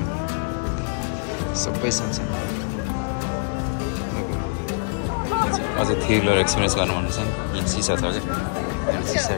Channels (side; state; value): right; silent; 60 dB below the other